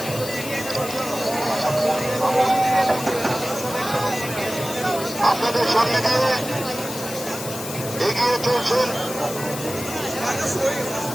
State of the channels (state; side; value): noise; left; hiss, 9 dB below the sound